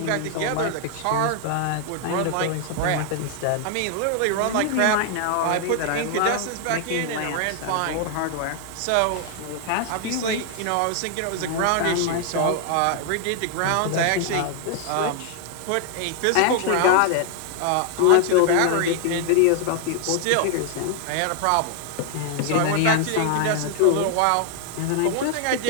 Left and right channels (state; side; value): different; both; correlation 0.00